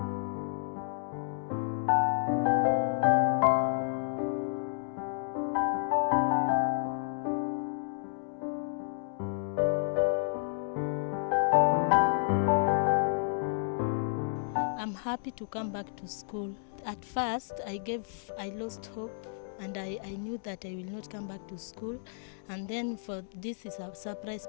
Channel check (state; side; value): silent; right; digital silence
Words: I'm happy to come back to school. At first, I lost hope and I knew that I will not come back to school. And then for this is a surprise